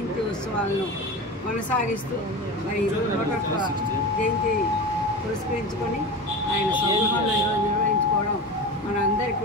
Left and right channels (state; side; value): normal; both; correlation 0.28